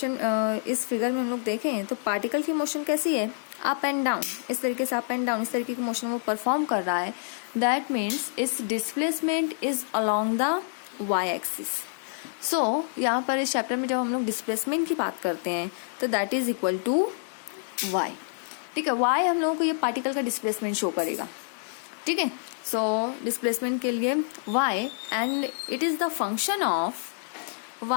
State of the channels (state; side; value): silent; right; digital silence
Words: इस फिगर में हम लोग देखें तो पार्टिकल की मोशन कैसी है, अप एंड डाउन, इस तरीके से अप एंड डाउन इस तरीके की मोशन वो परफॉर्म कर रहा है. दैट मीन्स इस displacement is along the Y axis. So यहाँ पर इस चैप्टर में जब हम लोग डिस्प्लेसमेंट की बात करते हैं तो that is equal to y. ठीक है, वाई हम लोगों को ये पार्टिकल का डिस्प्लेसमेंट शो करेगा. ठीक है, सो डिस्प्लेसमेंट के लिए y and it is the function of